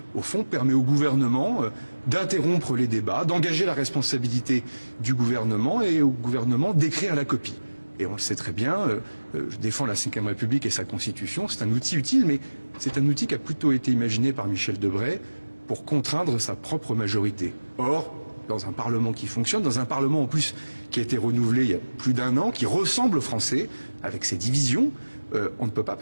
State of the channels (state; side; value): inverted; both; correlation -1.00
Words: au fond, permet au gouvernement d'interrompre les débats, d'engager la responsabilité du gouvernement et au gouvernement d'écrire la copie. Et on le sait très bien, je défends la Ve République et sa Constitution, c'est un outil utile, mais c'est un outil qui a plutôt été imaginé par Michel Debré pour contraindre sa propre majorité. Or, dans un Parlement qui fonctionne, dans un Parlement en plus qui a été renouvelé il y a plus d'1 an, qui ressemble aux Français, avec ses divisions, on ne peut pas